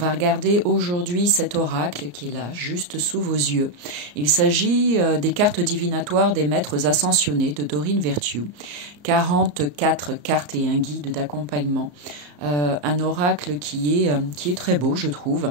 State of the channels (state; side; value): late; left; 34 ms